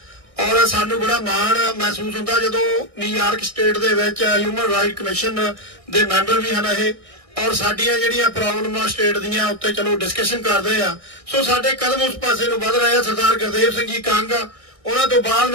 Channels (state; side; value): late; left; 1.6 ms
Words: ਔਰ ਸਾਨੂੰ ਬੜਾ ਮਾਣ ਮਹਿਸੂਸ ਹੁੰਦਾ ਜਦੋਂ ਨਿਊਯਾਰਕ ਸਟੇਟ ਦੇ ਵਿੱਚ ਹਿਊਮਨ ਰਾਈਟ ਕਮਿਸ਼ਨ ਦੇ ਮੈਂਬਰ ਵੀ ਹਨ ਇਹ, ਔਰ ਸਾਡੀਆਂ ਜਿਹੜੀਆਂ ਪ੍ਰੋਬਲਮਾਂ ਸਟੇਟ ਦੀਆਂ ਉੱਤੇ ਚਲੋ ਡਿਸਕਸ਼ਨ ਕਰਦੇ ਆ। ਸੋ ਸਾਡੇ ਕਦਮ ਉਸ ਪਾਸੇ ਨੂੰ ਵਧ ਰਹੇ ਆ। ਸਰਦਾਰ ਗੁਰਦੇਵ ਸਿੰਘ ਜੀ ਕੰਗ, ਉਹਨਾਂ ਤੋਂ ਬਾਅਦ